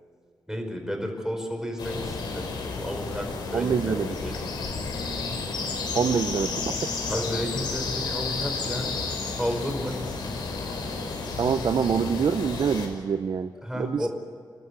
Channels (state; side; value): normal; both; correlation 0.66